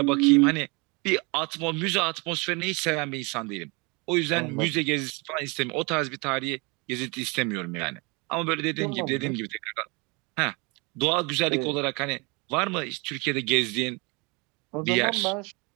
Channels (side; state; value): left; quieter; 29.0 dB